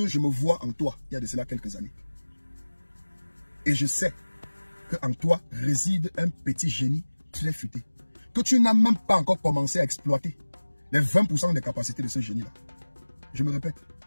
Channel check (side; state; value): both; inverted; correlation -1.00